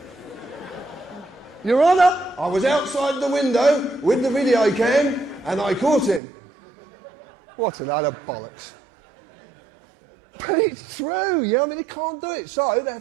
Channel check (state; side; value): drops out; left; at 6.2 s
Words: Your Honour, I was outside the window with the video cam, and I caught him. What a load of bollocks. But it's true, you know, I mean, they can't do it, so they